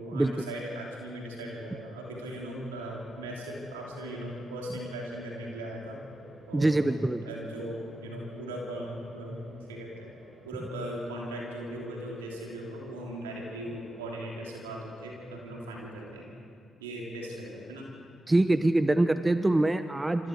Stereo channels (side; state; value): both; normal; correlation 0.91